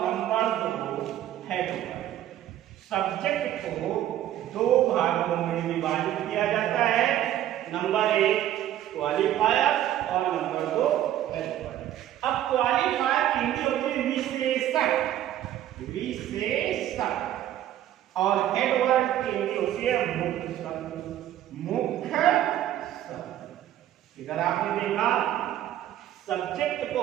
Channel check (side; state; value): left; quieter; 12.3 dB